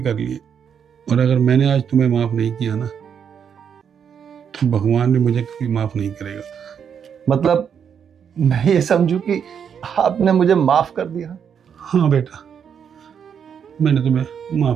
कर ली है। और अगर मैंने आज तुम्हें माफ नहीं किया ना, तो भगवान भी मुझे कभी माफ नहीं करेगा। मतलब मैं ये समझूं कि आपने मुझे माफ कर दिया? हाँ बेटा, मैंने तुम्हें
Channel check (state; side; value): quieter; left; 7.6 dB